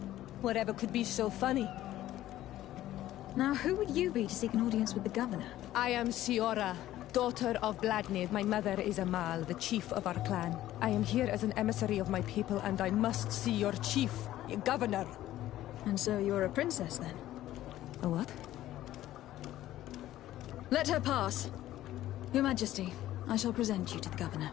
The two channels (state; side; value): quieter; right; 14.0 dB